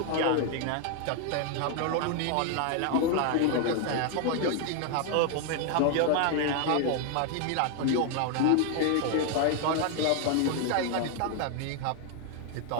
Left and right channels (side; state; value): both; different; correlation 0.00